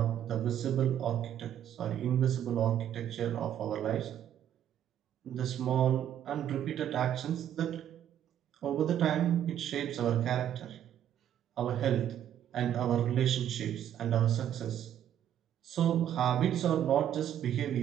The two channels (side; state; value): left; quieter; 10.4 dB